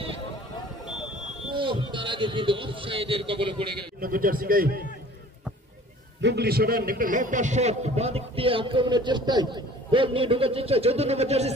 তার আগে কিন্তু অফসাইডের কবলে পড়ে গেল। মুগলি সরান একটা লম্বা শট বাঁ দিক দিয়ে আক্রমণের চেষ্টায় গোল নিয়ে ঢুকার চেষ্টা। 14 নম্বর জার্সি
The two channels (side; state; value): both; normal; correlation 0.48